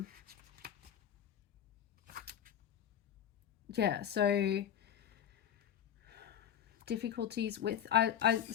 Yeah, so difficulties with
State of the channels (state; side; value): quieter; right; 9.7 dB